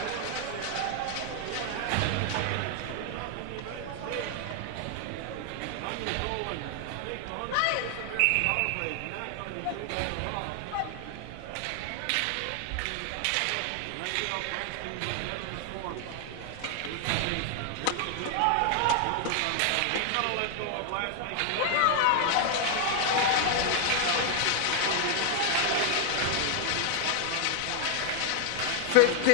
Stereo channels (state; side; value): different; both; correlation 0.00